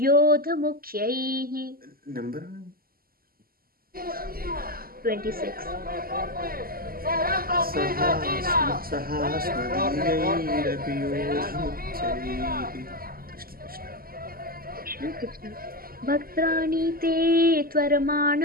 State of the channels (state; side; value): late; left; 0.42 ms